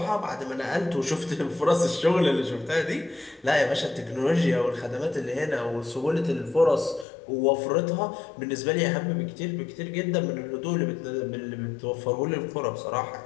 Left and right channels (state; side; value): drops out; right; at 7.1 s